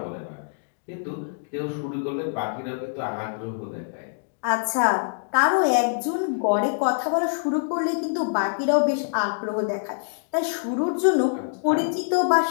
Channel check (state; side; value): silent; right; digital silence